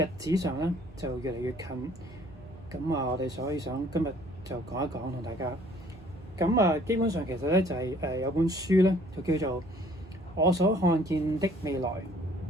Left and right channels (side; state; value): both; normal; correlation 0.57